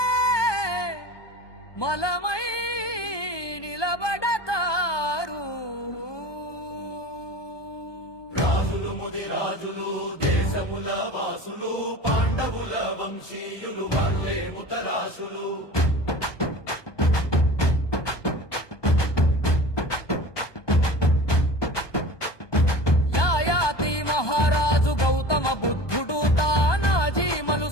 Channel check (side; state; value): right; late; 1.2 ms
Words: మలమై నిలబడతారు. రాజులు ముదిరాజులు దేశముల వాసులు పాండవుల వంశీయులు వాళ్ళే ముతరాసులు. యాయాతి మహారాజు గౌతమ బుద్ధుడు తానాజీ